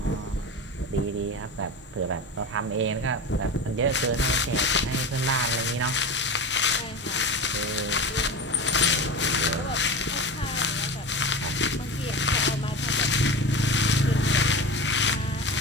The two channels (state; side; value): normal; both; correlation 0.27